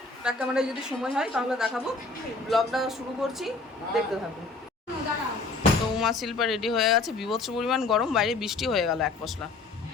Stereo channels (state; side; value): quieter; right; 3.7 dB